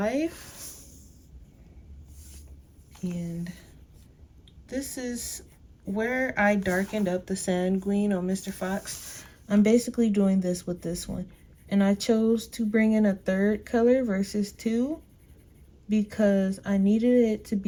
And this is where I darkened up the sanguine on Mr. Fox. I'm basically doing this with this one. And I chose to bring in a 3rd color versus 2 because I needed it to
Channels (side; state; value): both; identical; correlation 1.00